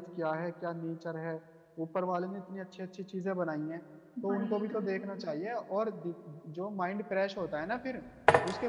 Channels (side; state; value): both; identical; correlation 1.00